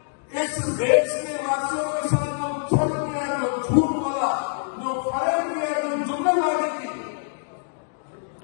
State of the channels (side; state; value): right; silent; digital silence